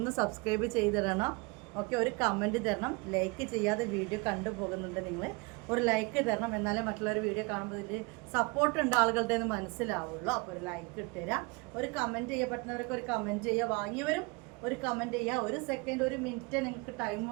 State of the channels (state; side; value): quieter; left; 27.6 dB